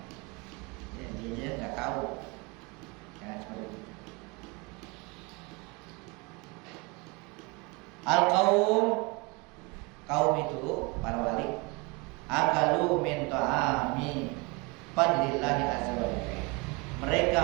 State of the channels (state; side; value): quieter; left; 27.6 dB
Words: ya, dia nggak tahu. Jangan seperti itu. Kaum itu para wali akalu min ta'ami fadlillahi azza wa jalla. Mereka